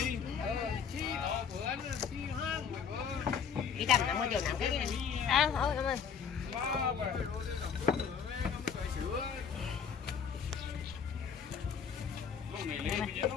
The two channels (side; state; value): right; quieter; 6.8 dB